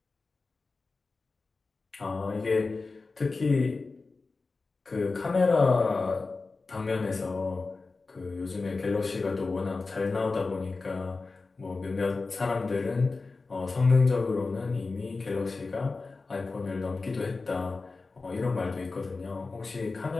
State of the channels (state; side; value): quieter; right; 3.9 dB